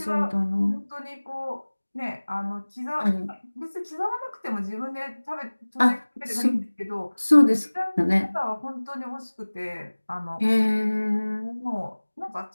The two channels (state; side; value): inverted; both; correlation -1.00